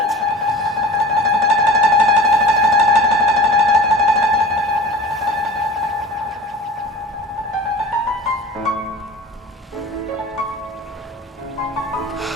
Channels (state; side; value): normal; both; correlation 0.39